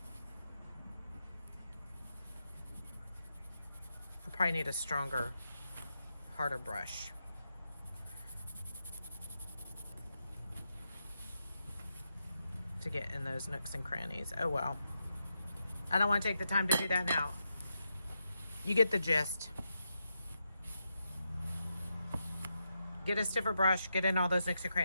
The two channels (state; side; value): inverted; both; correlation -0.85